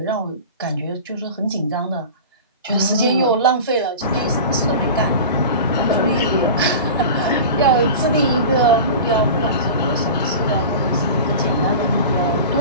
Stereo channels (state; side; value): inverted; both; correlation -0.33